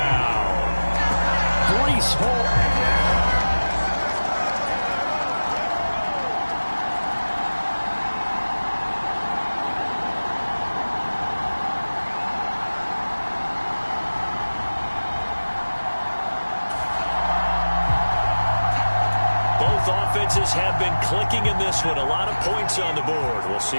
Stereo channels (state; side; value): inverted; both; correlation -1.00